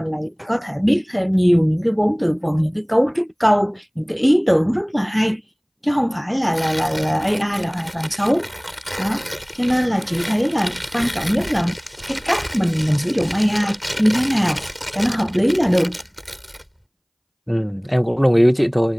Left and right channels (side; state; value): both; identical; correlation 1.00